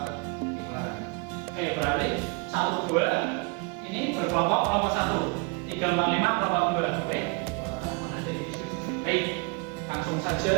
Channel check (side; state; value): left; quieter; 30.9 dB